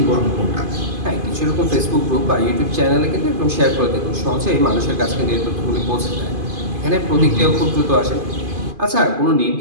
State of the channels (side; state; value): left; late; 2.5 ms